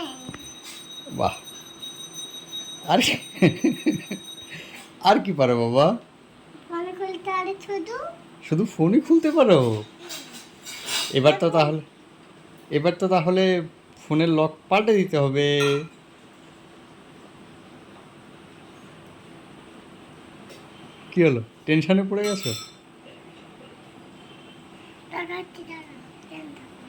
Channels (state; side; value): identical; both; correlation 1.00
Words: বাহ! আর আর কি পারো বাবা? ফোন খুলতে আরে শুধু শুধু ফোনই খুলতে পারো? এবার তো তাহলে এবার তো তাহলে ফোনের লক পাল্টে দিতে হবে। কি হলো, টেনশনে পড়ে গেছো? দেখাচ্ছি দাঁড়া।